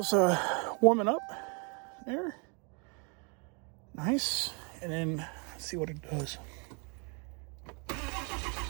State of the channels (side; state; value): left; quieter; 34.8 dB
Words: warming up there. Nice. And then let's see what it does.